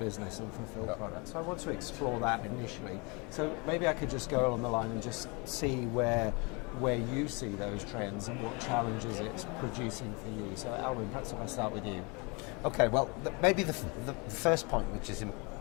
and fulfill products. So I want to explore that initially. So maybe I could just go along the line and just see where you see those trends and what challenges it's producing for you. So Alwyn, perhaps if I start with you. Okay, well, maybe the first point which is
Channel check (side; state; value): right; quieter; 29.7 dB